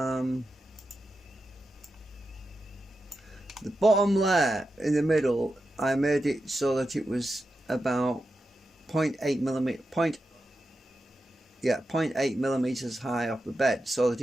The bottom layer in the middle, I made it so that it was about 0.8 millimeters high off the bed, so that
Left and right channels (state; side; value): normal; both; correlation 0.89